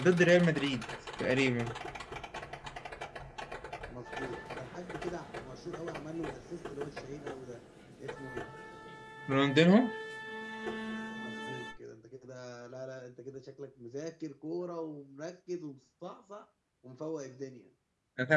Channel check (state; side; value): identical; both; correlation 1.00